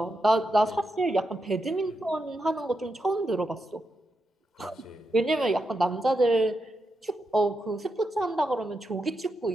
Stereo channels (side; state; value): both; normal; correlation 0.85